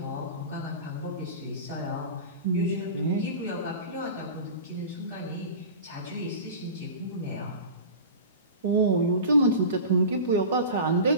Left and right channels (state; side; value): inverted; both; correlation -0.33